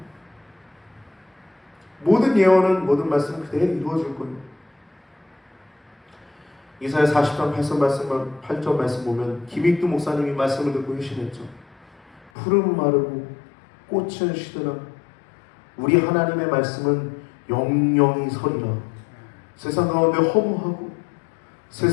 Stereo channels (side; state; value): right; drops out; at 12.3 s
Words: 모든 예언은, 모든 말씀은 그대로 이루어질 거예요. 이사야 40장 8절 말씀 보면 김익두 목사님이 말씀을 듣고 회심했죠. 푸른 마르고 꽃은 시드라 우리 하나님의 말씀은 영영이 서리라. 세상 가운데 허무하고